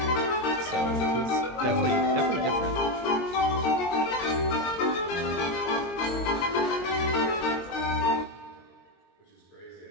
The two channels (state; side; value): late; right; 22 ms